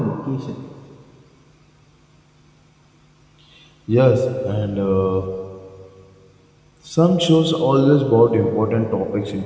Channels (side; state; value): both; identical; correlation 1.00